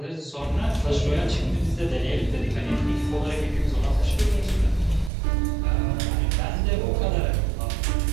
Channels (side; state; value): left; drops out; at 5.1 s